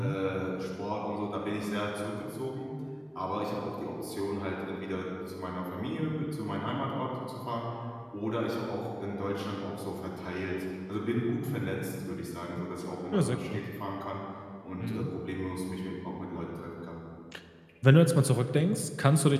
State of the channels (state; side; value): identical; both; correlation 1.00